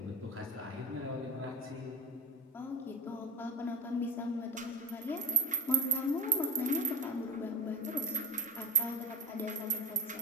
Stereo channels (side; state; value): both; normal; correlation 0.24